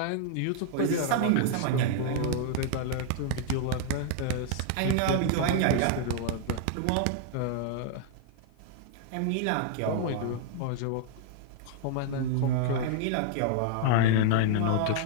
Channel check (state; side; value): different; both; correlation -0.01